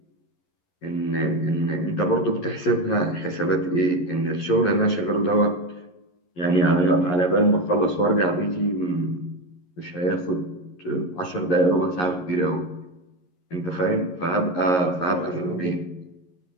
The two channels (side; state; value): right; late; 11 ms